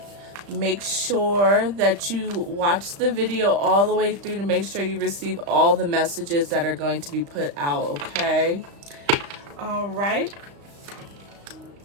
make sure that you watch the video all the way through to make sure you receive all the messages that are going to be put out, okay? All right.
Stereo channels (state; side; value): late; left; 35 ms